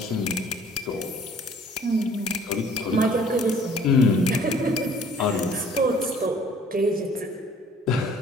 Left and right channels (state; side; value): normal; both; correlation 0.54